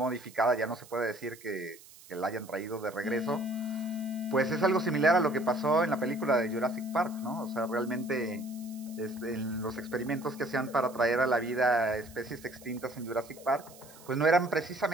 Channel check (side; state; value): right; noise; hiss, 21 dB below the sound